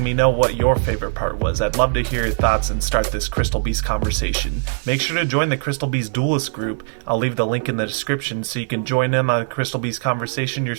me know what your favorite part was. I'd love to hear your thoughts and start this Crystal Beast conversation. Make sure to join the Crystal Beast Duelist group. I'll leave the link in the description so you can join in on the Crystal Beast conversation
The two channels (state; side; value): silent; left; 59 dB below the other